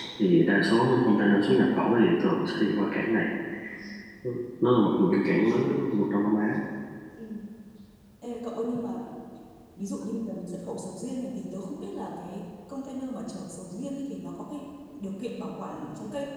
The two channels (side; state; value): both; identical; correlation 1.00